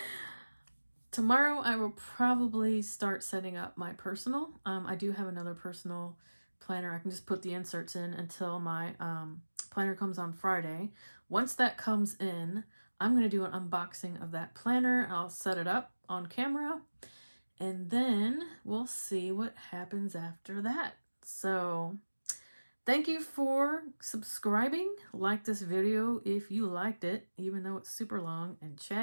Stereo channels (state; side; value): inverted; both; correlation -1.00